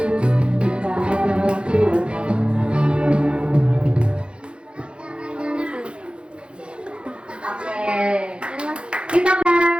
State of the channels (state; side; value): late; left; 0.057 ms